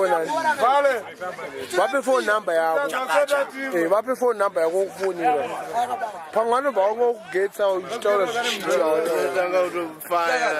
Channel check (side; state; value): both; identical; correlation 1.00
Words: Vale. Vape phone number yako. Vape phone number yako kufonira. Pangano baungokugetsa uchitaura Tanga